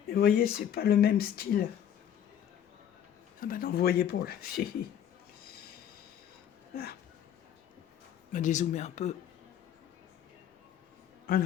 Et vous voyez, c'est pas le même style. Ah bah non, vous voyez pour la fille. Là. On va dézoomer un peu.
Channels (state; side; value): quieter; right; 9.7 dB